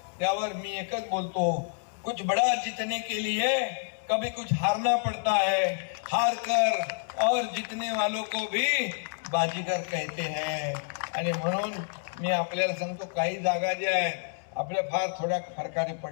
त्यावर मी एकच बोलतो, कुछ बड़ा जीतने के लिए कभी कुछ हारना पड़ता है, हार कर और जीतने वालों को भी बाजीगर कहते हैं. आणि म्हणून मी आपल्याला सांगतो, काही जागा ज्या आहेत आपल्या फार थोड्या फरकाने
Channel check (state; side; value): silent; right; 59 dB below the other